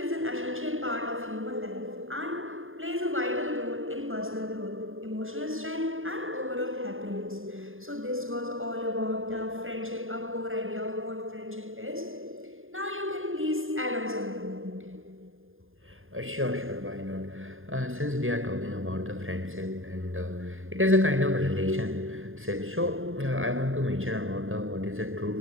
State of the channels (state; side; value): late; left; 0.59 ms